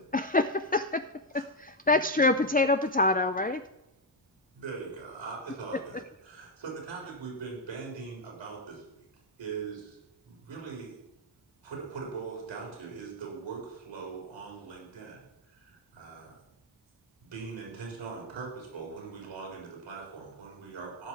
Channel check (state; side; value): normal; both; correlation 0.04